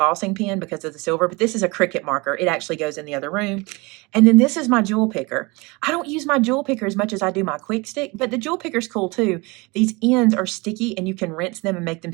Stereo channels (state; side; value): quieter; left; 25.7 dB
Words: pen because of the silver, but this is a Cricut marker. It actually goes in the other room. And then this is my jewel picker. I don't use my jewel picker as much as I do my quick stick, but the jewel picker's cool too. These ends are sticky and you can rinse them and make them